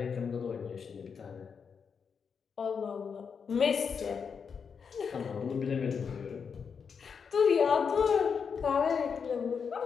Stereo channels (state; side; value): quieter; right; 6.3 dB